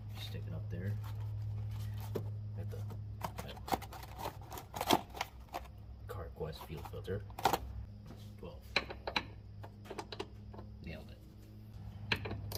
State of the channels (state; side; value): identical; both; correlation 1.00